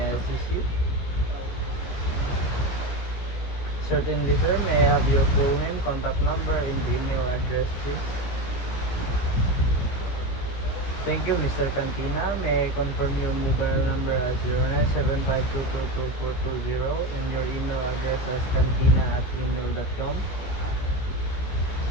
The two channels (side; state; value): right; late; 16 ms